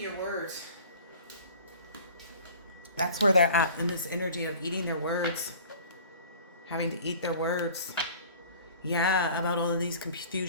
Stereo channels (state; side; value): inverted; both; correlation -0.45